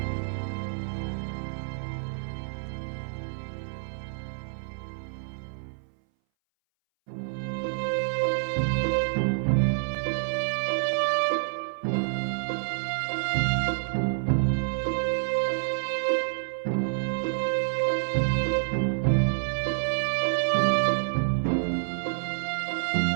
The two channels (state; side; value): silent; left; 59 dB below the other